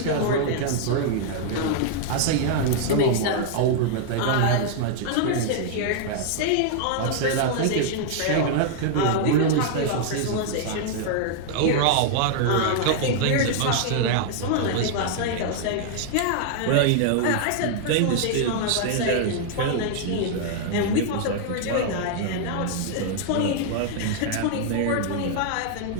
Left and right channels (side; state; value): both; different; correlation -0.01